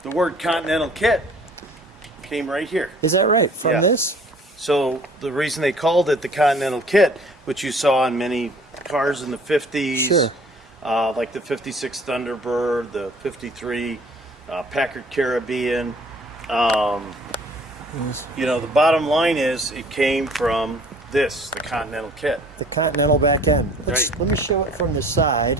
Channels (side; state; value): both; normal; correlation 0.53